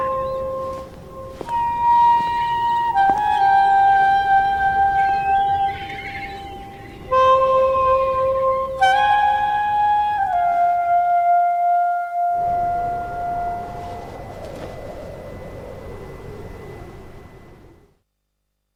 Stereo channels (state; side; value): identical; both; correlation 1.00